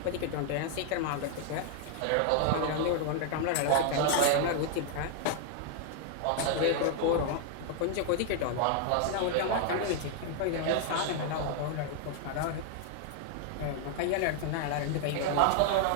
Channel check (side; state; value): both; different; correlation 0.00